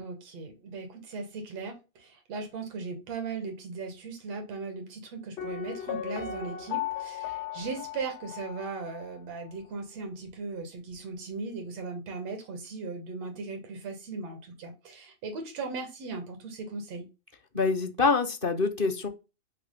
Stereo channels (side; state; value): left; late; 2.5 ms